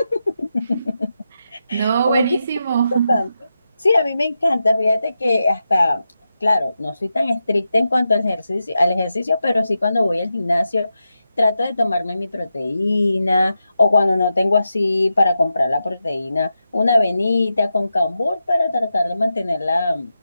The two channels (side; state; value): both; inverted; correlation -0.89